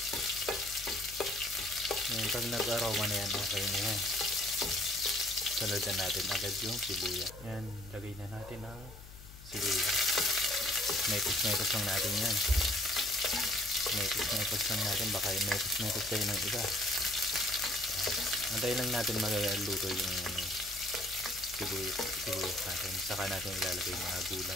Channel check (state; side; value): noise; left; hum, 16 dB below the sound